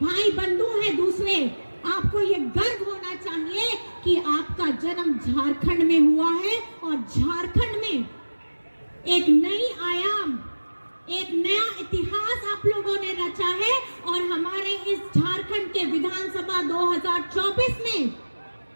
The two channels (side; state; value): both; inverted; correlation -1.00